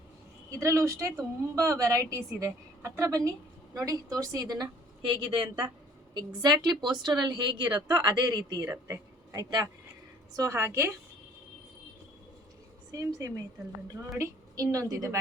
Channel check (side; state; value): both; normal; correlation 0.55